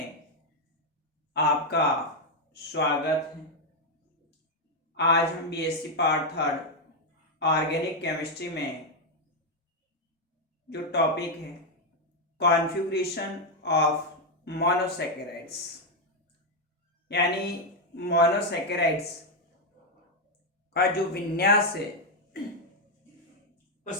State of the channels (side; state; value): both; normal; correlation 0.02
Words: आपका स्वागत है। आज हम BSc part third organic chemistry में जो टॉपिक है कॉन्फ़िगरेशन ऑफ मोनोसैकेराइड्स यानी मोनोसैकेराइड्स का जो विन्यास है